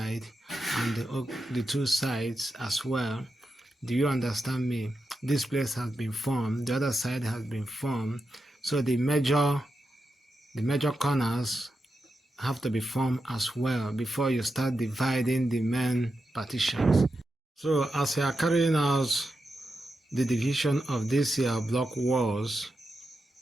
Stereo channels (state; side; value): normal; both; correlation 0.88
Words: and the two sides as well. Do you understand me? This place has been formed, the other side has been formed, so the major corners have to be formed as well before you start dividing the main partitions. So as you are carrying out the division of these block walls,